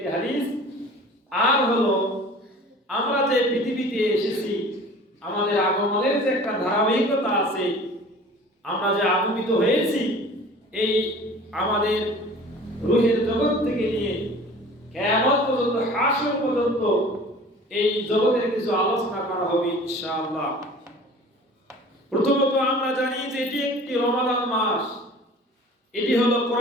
হাদিস। আর হলো, আমরা যে পৃথিবীতে এসেছি, আমাদের আগমনের যে একটা ধারাবাহিকতা আছে, আমরা যে আগমিত হয়েছি, এই আমাদের রূহের জগৎ থেকে নিয়ে কিয়ামত পর্যন্ত, হাসর পর্যন্ত এই জগতের কিছু আলোচনা করা হবে ইনশাআল্লাহ। প্রথমত আমরা জানি যে এটি একটি রমাদান মাস, এটি হলো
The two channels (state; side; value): normal; both; correlation 0.44